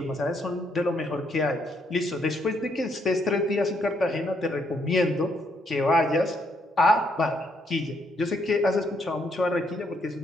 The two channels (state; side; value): normal; both; correlation 0.73